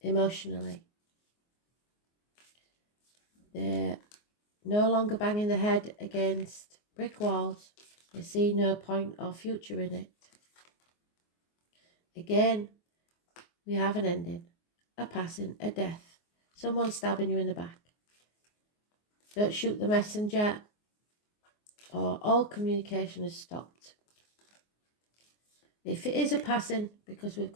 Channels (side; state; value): right; late; 24 ms